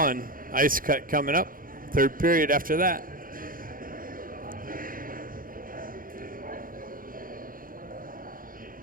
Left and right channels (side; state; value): left; late; 0.41 ms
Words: Ice cut coming up. Third period after that.